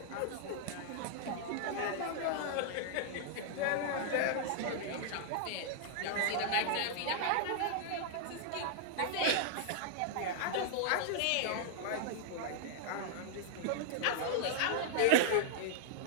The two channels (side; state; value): both; different; correlation -0.01